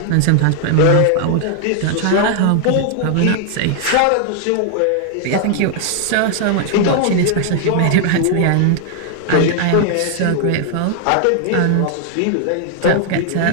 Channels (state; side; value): different; both; correlation 0.00